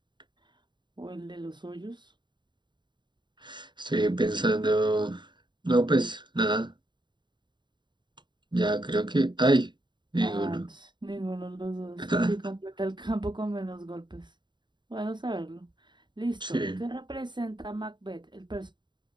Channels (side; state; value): left; late; 0.22 ms